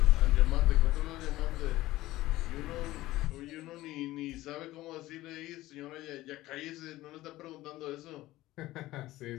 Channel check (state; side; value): quieter; right; 16.9 dB